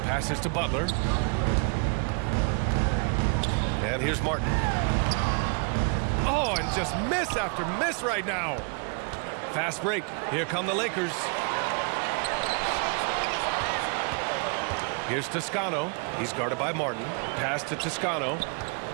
passes to Butler. And here's Martin. Oh, and just miss after miss right now. Fast break. Here come the Lakers. Here's Toscano. He's guarded by Martin. Pass to Toscano.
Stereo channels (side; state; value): left; quieter; 36.7 dB